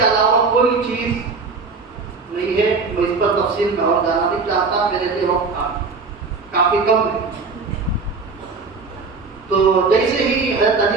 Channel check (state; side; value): quieter; left; 4.4 dB